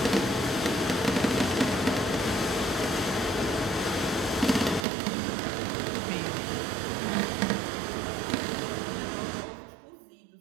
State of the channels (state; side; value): drops out; left; at 4.9 s